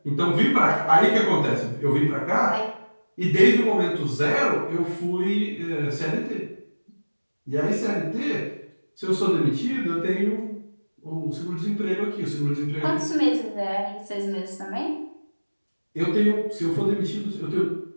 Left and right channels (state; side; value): inverted; both; correlation -1.00